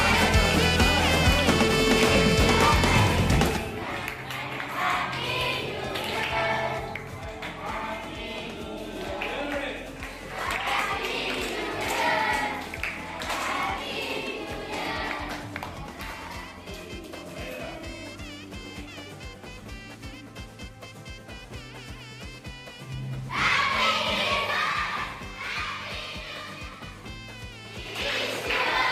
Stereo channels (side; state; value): both; identical; correlation 1.00